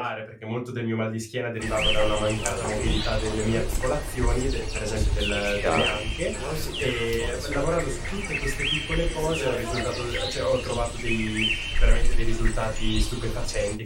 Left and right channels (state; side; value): identical; both; correlation 1.00